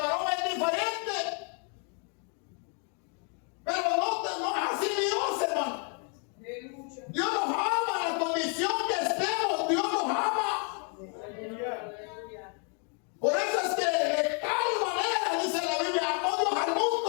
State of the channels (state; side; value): quieter; right; 39.3 dB